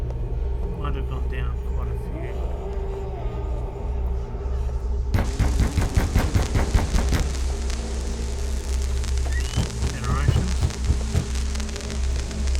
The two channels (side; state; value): both; identical; correlation 1.00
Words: might have gone down quite a few. Generations.